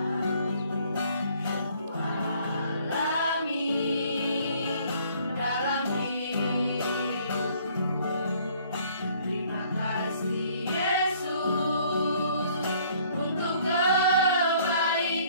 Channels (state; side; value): inverted; both; correlation -0.59